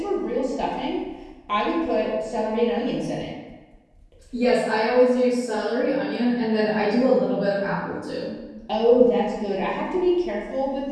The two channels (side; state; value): both; identical; correlation 1.00